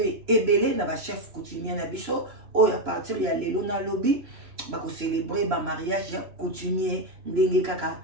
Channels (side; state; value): left; late; 3.0 ms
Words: ebele na ba chef coutumier na biso oyo à partir ya lelo na lobi bako célébrer ba mariage coutumier ndenge kaka